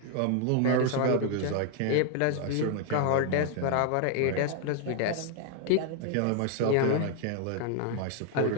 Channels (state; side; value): different; both; correlation 0.00